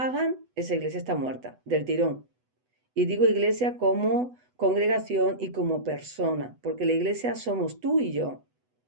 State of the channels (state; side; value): late; left; 8.0 ms